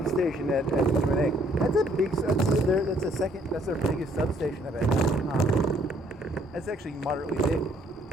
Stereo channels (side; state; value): both; normal; correlation 0.64